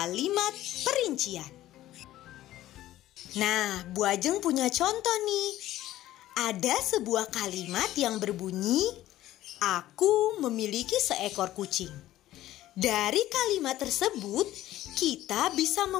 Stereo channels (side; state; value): right; quieter; 14.5 dB